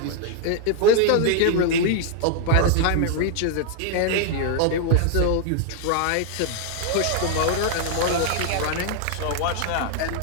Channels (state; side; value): different; both; correlation 0.00